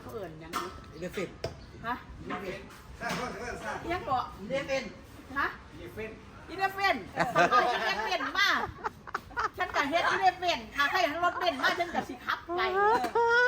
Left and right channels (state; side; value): identical; both; correlation 1.00